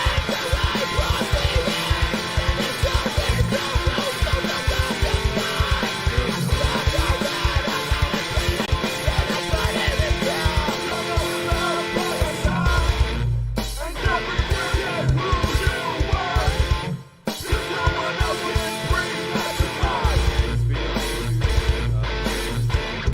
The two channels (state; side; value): identical; both; correlation 1.00